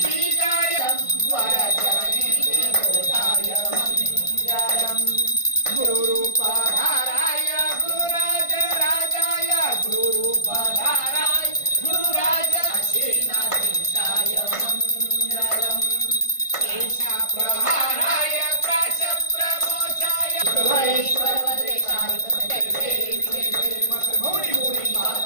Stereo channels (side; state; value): right; late; 1.5 ms